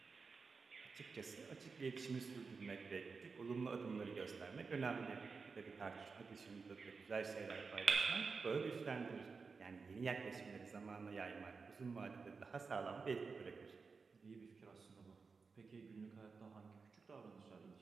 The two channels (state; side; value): quieter; left; 4.8 dB